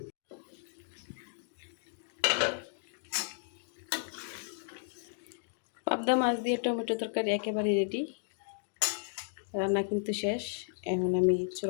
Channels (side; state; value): right; silent; digital silence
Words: পাবদা মাছ দিয়ে টমেটো তরকারি একেবারে রেডি। রান্না কিন্তু শেষ। এখন আমি